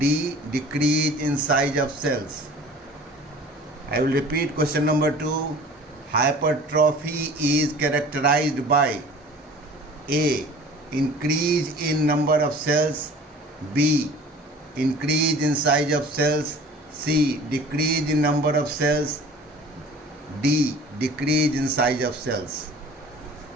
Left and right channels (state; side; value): normal; both; correlation 0.45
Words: decrease in size of cells. I will repeat question number 2. Hypertrophy is characterized by A, increase in number of cells, B, increase in size of cells, C, decrease in number of cells, D, decrease in size of cells.